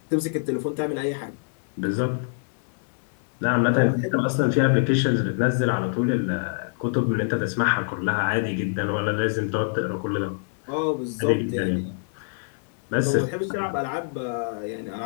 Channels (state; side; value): silent; right; digital silence